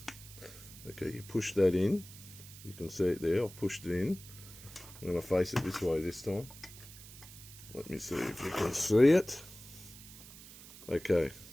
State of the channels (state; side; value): noise; right; hiss, 17 dB below the sound